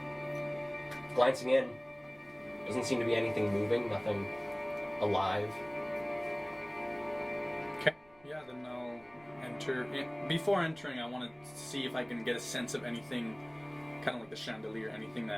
Glancing in, doesn't seem to be anything moving, nothing alive. Okay. Yeah, then I'll enter. Before entering, I want to see if I can get a sense of anything, kind of like the chandelier, anything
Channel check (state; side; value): noise; right; rumble, 28 dB below the sound